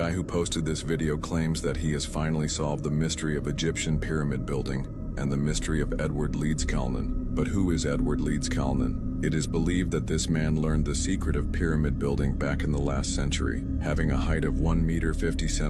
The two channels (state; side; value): identical; both; correlation 1.00